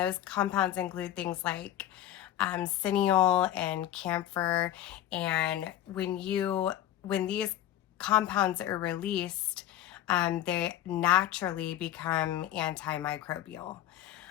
compounds include things like cineol and camphor. And when these compounds are released, they naturally become antimicrobial.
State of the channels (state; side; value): quieter; right; 12.5 dB